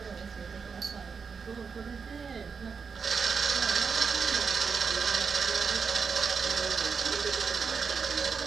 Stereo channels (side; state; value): left; quieter; 5.6 dB